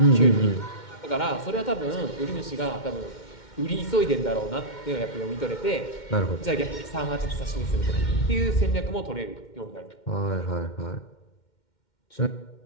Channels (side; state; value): right; late; 2.1 ms